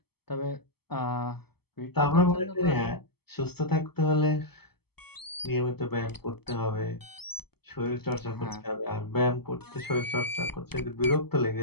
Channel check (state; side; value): late; right; 0.96 ms